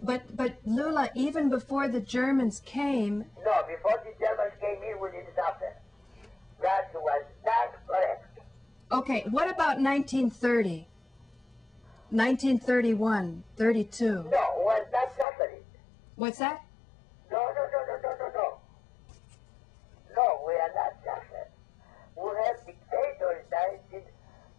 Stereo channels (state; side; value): drops out; right; at 15.2 s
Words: But Loula, even before the Germans came... No, before the Germans came in, we didn't suffer. That was not correct. Okay, what about 1930? 1931, 32? No, was not suffering. What's that? No. No, we are not suffering. We have dictators,